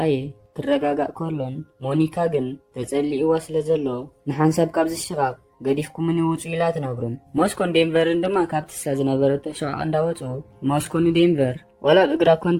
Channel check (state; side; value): identical; both; correlation 1.00